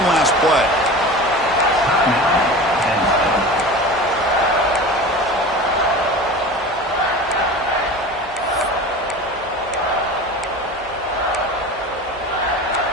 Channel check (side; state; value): both; normal; correlation 0.34